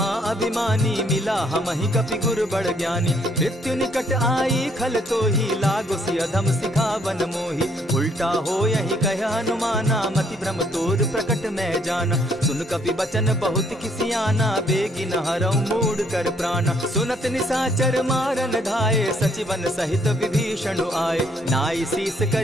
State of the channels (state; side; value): normal; both; correlation 0.67